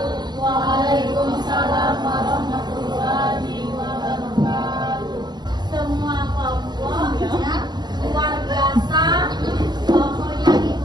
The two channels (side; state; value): left; late; 0.21 ms